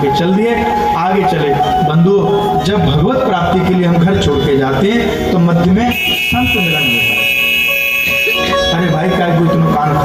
के चल दिए, आगे चले। बंधुओं, जब भगवत प्राप्ति के लिए हम घर छोड़ के जाते हैं तो मध्य में संत मिलन होता है। अरे भाई क्या कोई तुम्हें कान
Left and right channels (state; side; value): identical; both; correlation 1.00